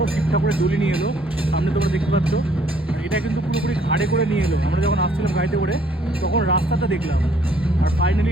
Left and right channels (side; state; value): both; normal; correlation 0.63